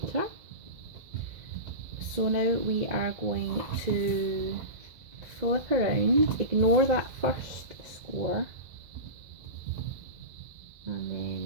So now we are going to flip around, ignore that first score, and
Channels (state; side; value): late; left; 2.0 ms